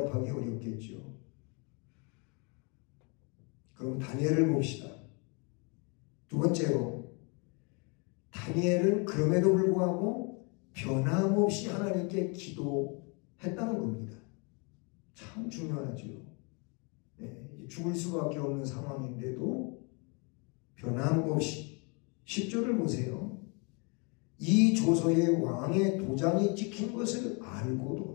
어렵겠죠. 그럼 다니엘을 봅시다. 두 번째로, 다니엘은 그럼에도 불구하고 변함없이 하나님께 기도했다는 겁니다. 참 중요하죠. 죽을 수밖에 없는 상황인데도 변함없이 10절을 보세요. 이 조서에 왕의 도장이 찍힌 것을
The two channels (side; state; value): right; quieter; 33.2 dB